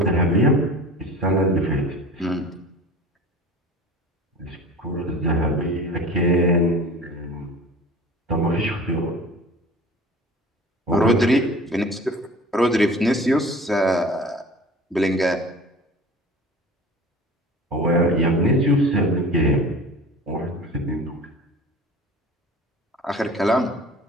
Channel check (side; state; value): both; normal; correlation 0.40